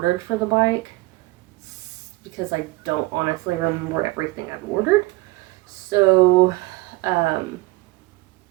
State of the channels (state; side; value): quieter; left; 20.5 dB